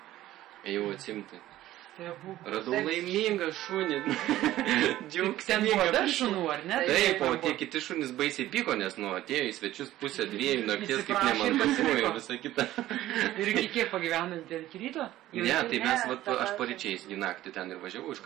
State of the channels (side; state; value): left; quieter; 14.6 dB